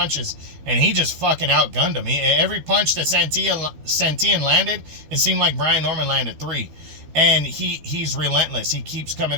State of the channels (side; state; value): left; late; 12 ms